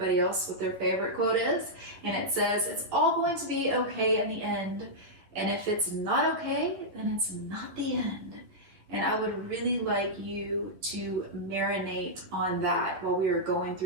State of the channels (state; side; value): late; left; 11 ms